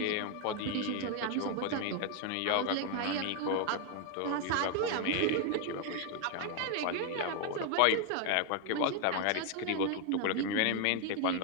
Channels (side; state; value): both; different; correlation 0.00